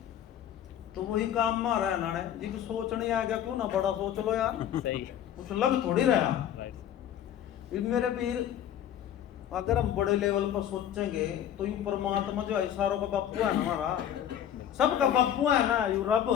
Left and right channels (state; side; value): quieter; right; 10.4 dB